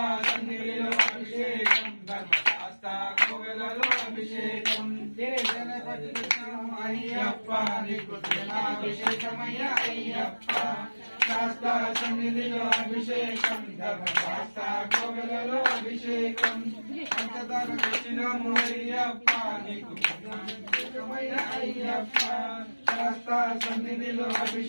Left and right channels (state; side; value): inverted; both; correlation -1.00